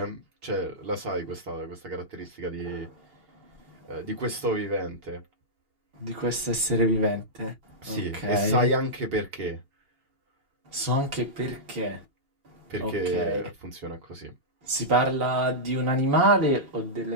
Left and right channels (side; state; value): left; late; 2.8 ms